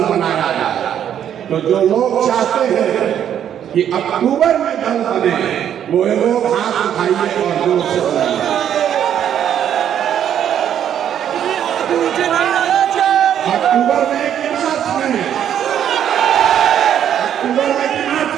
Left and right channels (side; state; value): left; quieter; 9.7 dB